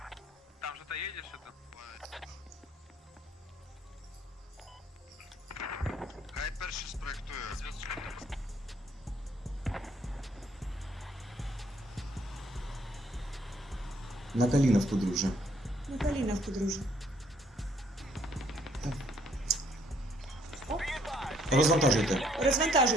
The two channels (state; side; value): normal; both; correlation 0.66